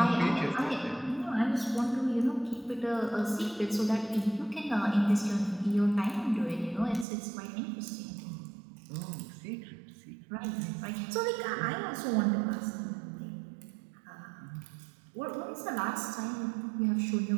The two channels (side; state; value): left; drops out; at 7.1 s